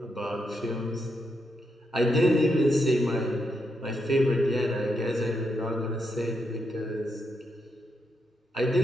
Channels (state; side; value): normal; both; correlation 0.82